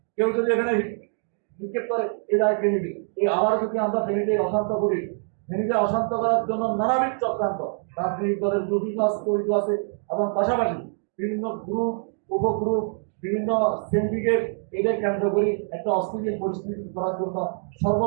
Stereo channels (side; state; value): left; silent; 57 dB below the other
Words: কেউ যদি এখানে নিক্ষেপ করে, এ দায় কে নিবে? এই আবার যদি আমরা ফেনীতে অশান্ত করি, ফেনীতে অশান্ত করার জন্য নানাবিধ চক্রান্ত রাজনৈতিক দলের জড়িত আছে এবং পাশাপাশি বিভিন্ন গ্রুপ, উপগ্রুপ, বিভিন্ন সিন্ডিকেট এদের কেন্দ্র করে একটা অস্থিতিশীল পরিস্থিতি করার জন্য